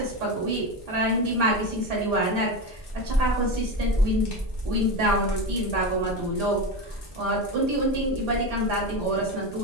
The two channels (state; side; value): normal; both; correlation 0.19